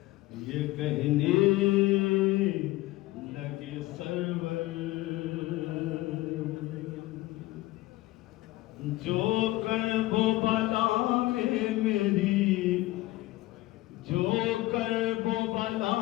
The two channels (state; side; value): quieter; right; 18.2 dB